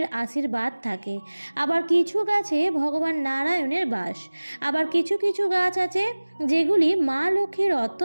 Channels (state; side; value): inverted; both; correlation -1.00